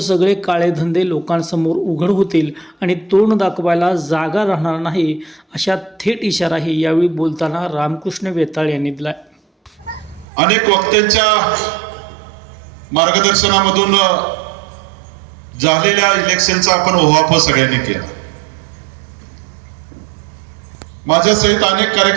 काळे धंदे लोकांसमोर उघड होतील आणि तोंड दाखवायला जागा राहणार नाही, अशा थेट इशाराही यावेळी बोलताना रामकृष्ण वेताळ यांनी दिला। अनेक वक्त्यांच्या मार्गदर्शनामधून झालेल्या इलेक्शनचा आपण ओहापोह सगळ्यांनी केला। माझ्या सहित अनेक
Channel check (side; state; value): left; drops out; at 10.2 s